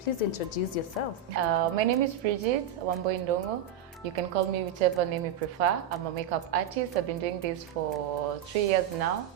please introduce yourself. My name is Bridget Wambui. You can call me whichever name you prefer. I'm a makeup artist. I've been doing this for 3 years now.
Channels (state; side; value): quieter; left; 8.1 dB